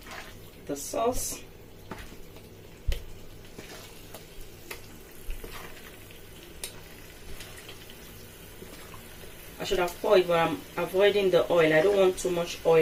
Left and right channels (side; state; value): both; identical; correlation 1.00